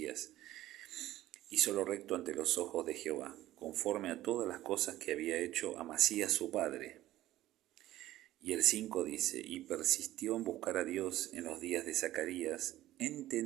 Hizo lo recto ante los ojos de Jehová, conforme a todas las cosas que había hecho Amasías su padre. Y el 5 dice, y persistió en buscar a Dios en los días de Zacarías,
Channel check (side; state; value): left; quieter; 14.9 dB